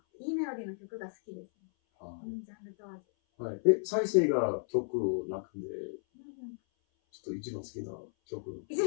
いいメロディーの曲が好きですね。ジャンル問わず。はい。再生が曲の中で、ちょっと一番好きな曲。一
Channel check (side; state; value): right; silent; 55 dB below the other